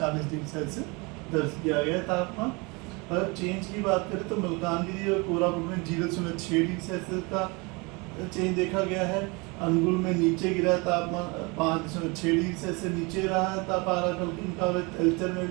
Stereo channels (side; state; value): left; quieter; 28.1 dB